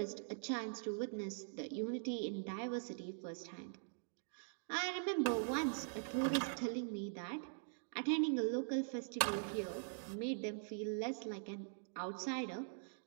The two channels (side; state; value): left; silent; digital silence